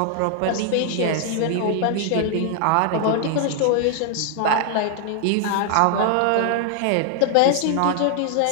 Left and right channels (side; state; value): both; different; correlation 0.00